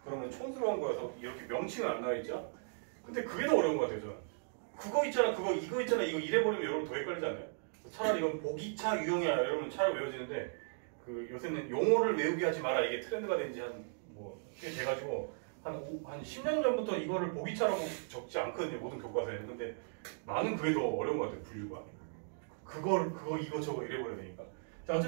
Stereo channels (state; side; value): silent; left; digital silence